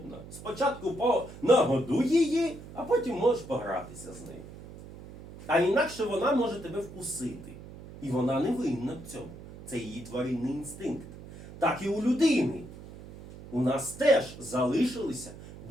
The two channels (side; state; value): right; noise; hum, 15 dB below the sound